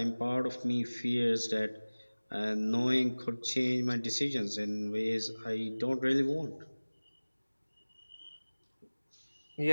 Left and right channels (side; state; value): both; inverted; correlation -1.00